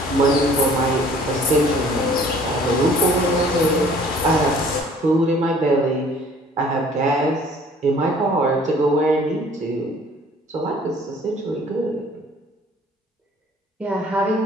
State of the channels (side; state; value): both; normal; correlation 0.53